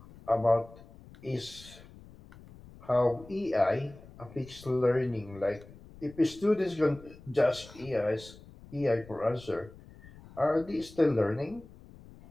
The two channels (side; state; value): left; noise; rumble, 20 dB below the sound